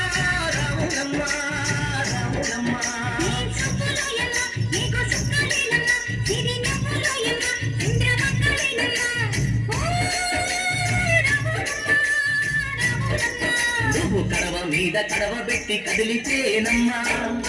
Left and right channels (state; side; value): identical; both; correlation 1.00